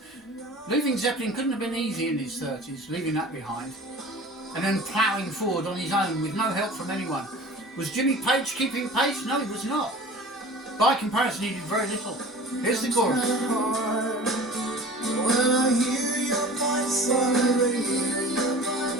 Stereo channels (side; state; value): both; normal; correlation 0.41